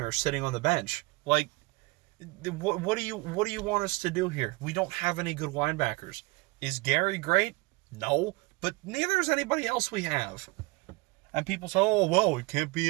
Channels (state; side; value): quieter; left; 24.7 dB